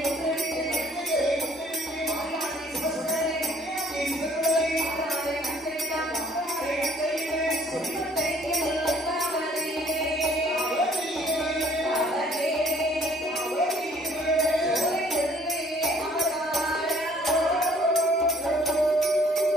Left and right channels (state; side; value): normal; both; correlation 0.59